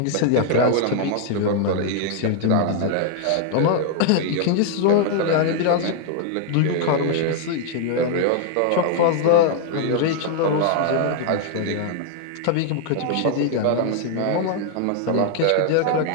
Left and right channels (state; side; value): different; both; correlation 0.00